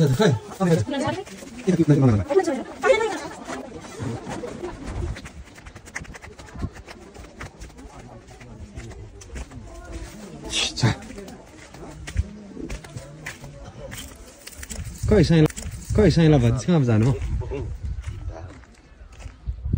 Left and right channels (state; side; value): identical; both; correlation 1.00